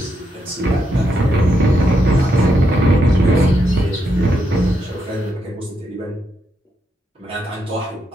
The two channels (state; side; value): normal; both; correlation 0.81